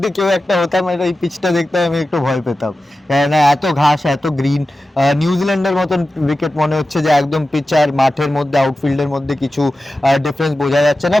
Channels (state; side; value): normal; both; correlation 0.94